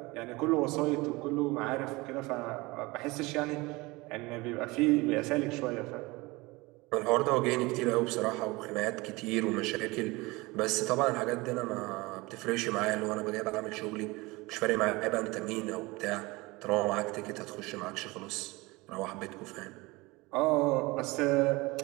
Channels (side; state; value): left; quieter; 23.0 dB